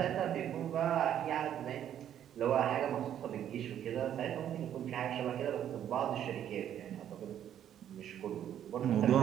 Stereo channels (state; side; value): quieter; left; 10.3 dB